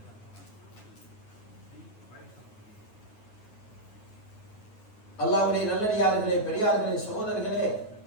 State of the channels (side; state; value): right; late; 9.4 ms